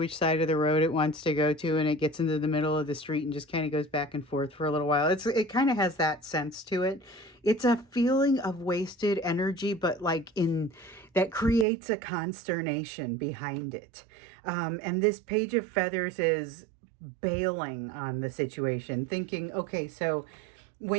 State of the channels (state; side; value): drops out; left; at 11.7 s